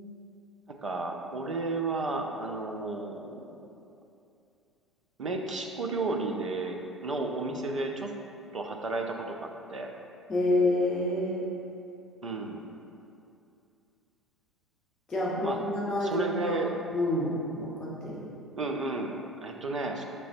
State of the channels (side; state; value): both; normal; correlation 0.46